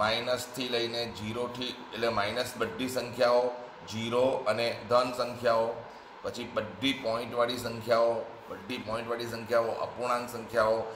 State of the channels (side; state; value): both; identical; correlation 1.00